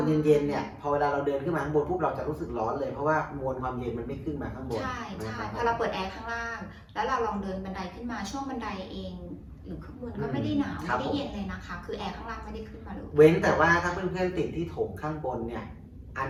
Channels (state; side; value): identical; both; correlation 1.00